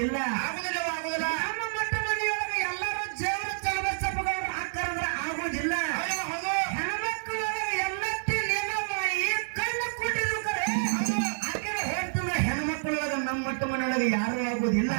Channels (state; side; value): silent; left; digital silence